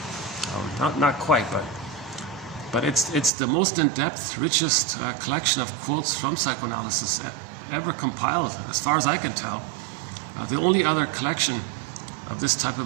Not quite, but it's the most in-depth, richest collection of quotes from psychoanalysis ever compiled, as far as I can tell. The only other collection of this type of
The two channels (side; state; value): left; drops out; at 3.3 s